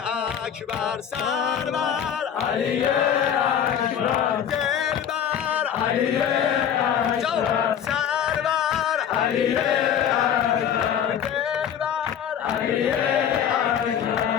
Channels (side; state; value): right; quieter; 8.9 dB